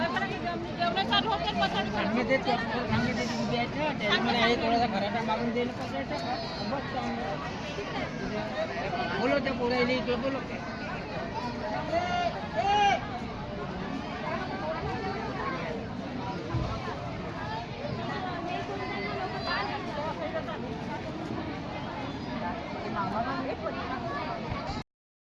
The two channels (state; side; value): identical; both; correlation 1.00